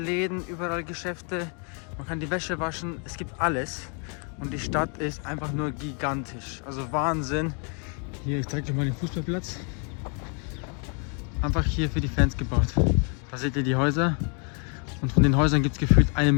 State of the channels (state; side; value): quieter; right; 39.2 dB